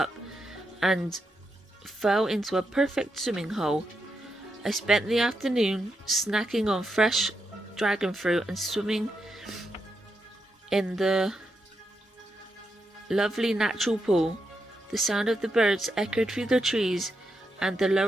and fell into a perfect swimming hole. I spent the afternoon snacking on fresh dragon fruit and swimming in the lovely natural pool. The sound of the birds echoed through the trees, and the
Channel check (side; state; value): both; normal; correlation 0.84